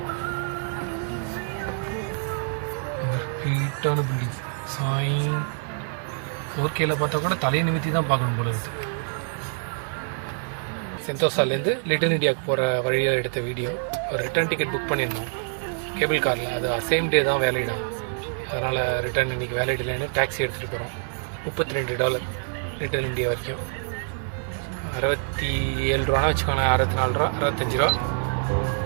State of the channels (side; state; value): left; silent; 61 dB below the other